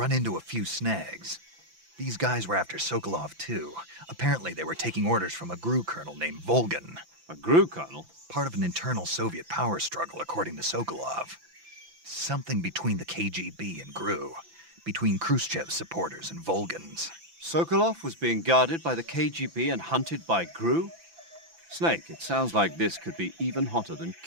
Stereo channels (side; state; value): left; late; 5.9 ms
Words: into a few snags. These guys were after Sokolov, too. Apparently they were taking orders from a GRU colonel named Volgan. A GRU colonel? Part of an internal Soviet power struggle, according to Sokolov. Something between the KGB and GRU. Between Khrushchev's supporters and Volgan's. Sokolov was being guarded by the KGB and hunted by GRU? Snake, it sounds like this could be even hotter than